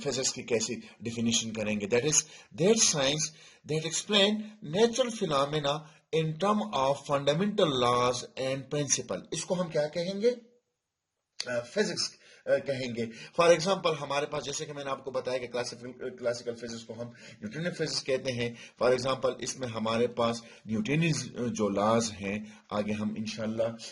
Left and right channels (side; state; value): both; identical; correlation 1.00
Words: की कैसी डिफिनीशन करेंगे, that is that science that explain natural phenomena in term of fundamental laws and principle, इसको हम क्या कहेंगे, फिजिक्स कहेंगे। फॉर एग्जांपल हमारे पास, जैसे कि मैंने आपको बताया कि क्लासिकल फिजिक्स को हम न्यूटोनियन फिजिक्स कहते हैं। फॉर एग्जांपल इसमें हमारे पास न्यूटोनियन जो लॉज हैं, आगे हम